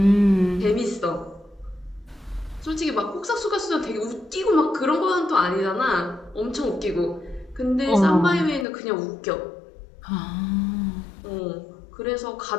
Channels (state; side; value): drops out; right; at 8.7 s